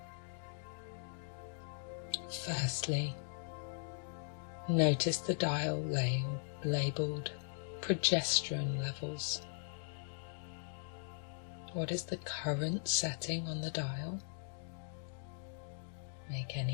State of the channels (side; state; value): right; silent; digital silence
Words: Firstly, notice the dial labelled progesterone levels. What is the current setting on the dial? Make